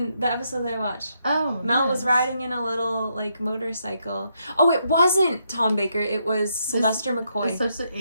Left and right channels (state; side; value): inverted; both; correlation -0.78